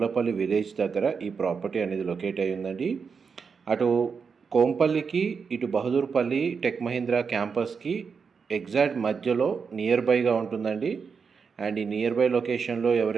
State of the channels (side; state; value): left; quieter; 5.7 dB